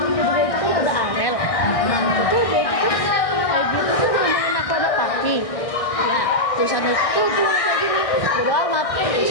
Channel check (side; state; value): right; late; 1.6 ms